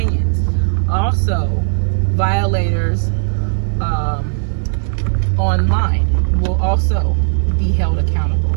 Also, violators online will also be held accountable.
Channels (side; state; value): left; silent; digital silence